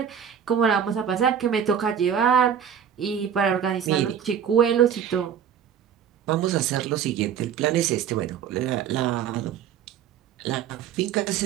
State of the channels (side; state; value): left; quieter; 8.5 dB